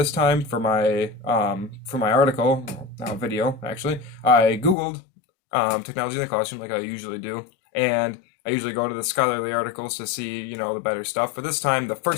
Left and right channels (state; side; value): drops out; right; at 4.8 s